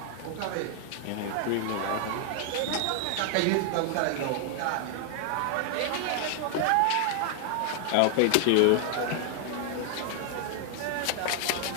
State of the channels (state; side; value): different; both; correlation 0.00